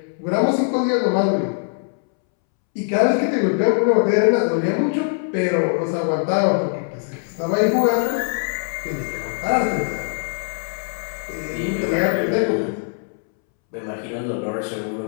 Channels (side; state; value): right; silent; 65 dB below the other